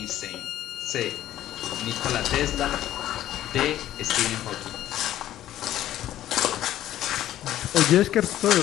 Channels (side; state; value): right; quieter; 12.9 dB